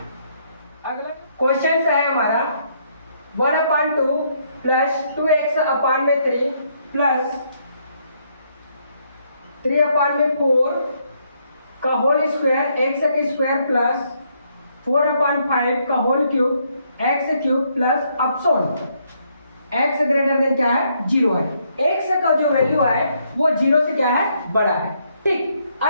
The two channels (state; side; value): inverted; both; correlation -0.72